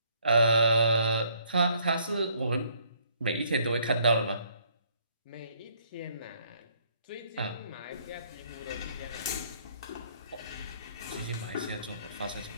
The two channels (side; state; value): both; inverted; correlation -0.65